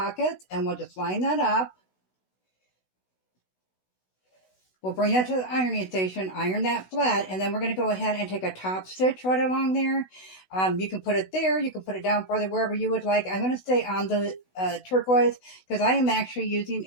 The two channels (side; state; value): right; late; 16 ms